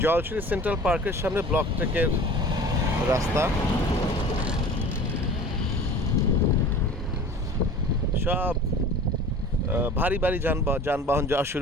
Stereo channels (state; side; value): normal; both; correlation 0.42